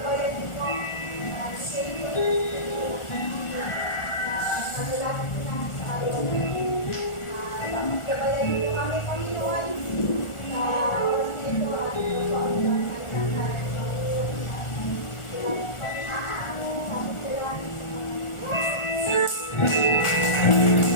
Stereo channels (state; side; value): late; right; 1.4 ms